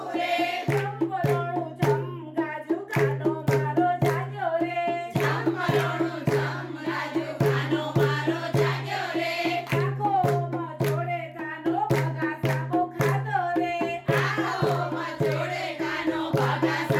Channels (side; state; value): both; identical; correlation 1.00